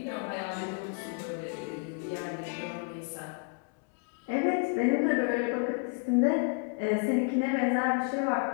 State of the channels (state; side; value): quieter; right; 36.0 dB